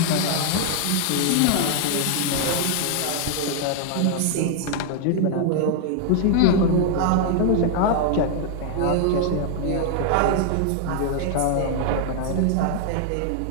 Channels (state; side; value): different; both; correlation 0.00